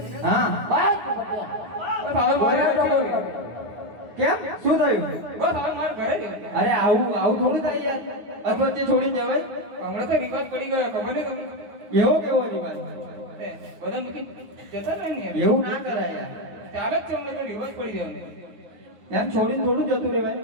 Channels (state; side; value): late; left; 9.6 ms